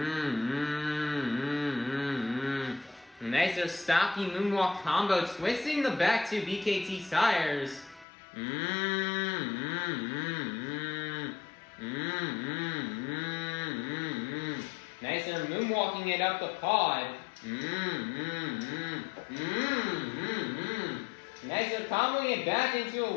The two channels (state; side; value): drops out; right; at 8.1 s